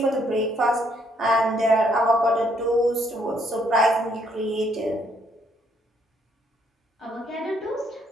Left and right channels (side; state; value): both; normal; correlation 0.70